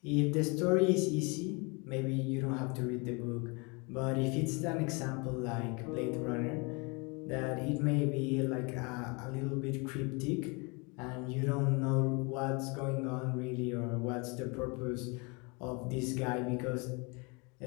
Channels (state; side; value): quieter; right; 30.1 dB